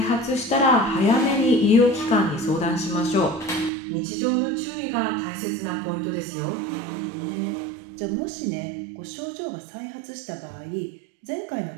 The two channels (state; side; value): drops out; left; at 3.7 s